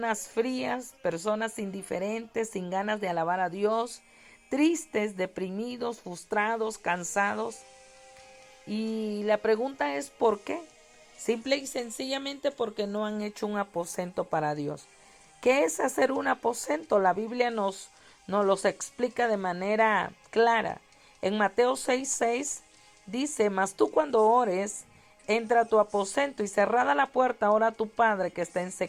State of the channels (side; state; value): both; identical; correlation 1.00